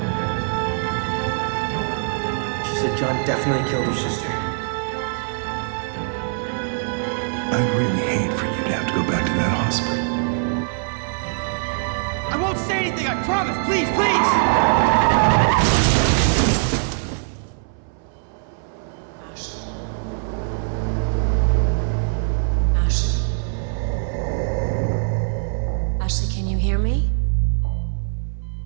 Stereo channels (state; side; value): silent; left; 64 dB below the other